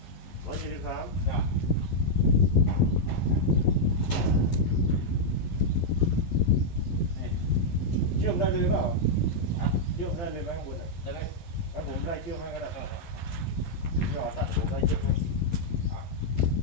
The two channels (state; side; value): late; right; 11 ms